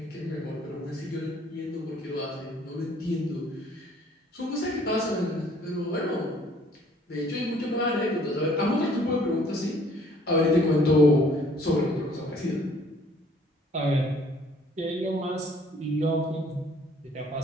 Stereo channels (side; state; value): both; normal; correlation 0.58